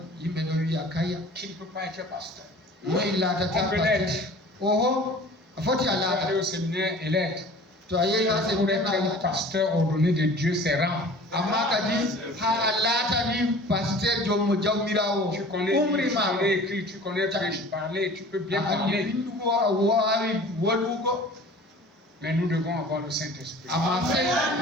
qui ne peut pas être pasteur. On peut l'être. Il faut aller au séminaire et l'être. Pour être un pasteur ordonné de Dieu, c'est rare. Tu connais écrire, tu connais parler, tu peux bien parler. Mais nous devons avoir le Saint-Esprit.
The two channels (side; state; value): both; normal; correlation 0.44